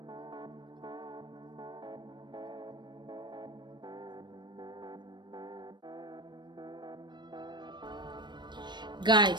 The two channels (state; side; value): late; left; 0.22 ms